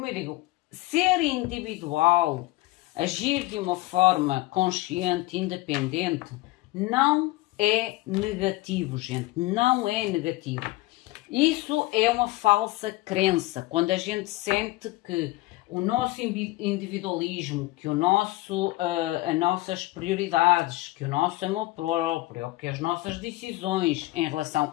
eu digo, ser individual, agir de uma forma consciente, independente, não é negativo, gente, não é negativo. Isso é uma falsa crença, quando a gente sente que o nosso individualismo, que as nossas prioridades, que o nosso amor próprio, que as nossas decisões em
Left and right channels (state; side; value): quieter; right; 19.5 dB